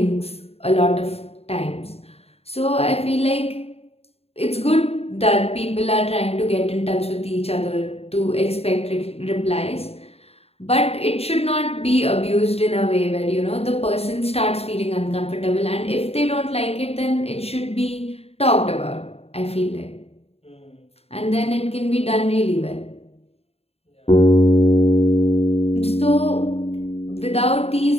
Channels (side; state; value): right; late; 0.29 ms